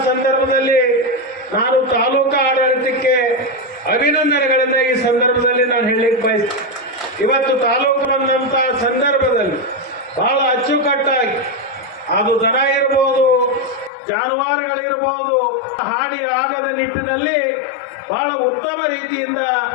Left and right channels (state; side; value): drops out; right; at 13.9 s